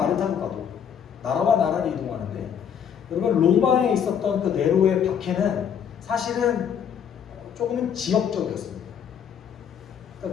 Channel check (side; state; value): right; quieter; 8.1 dB